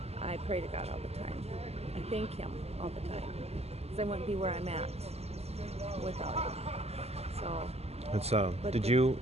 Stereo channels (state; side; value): late; left; 0.30 ms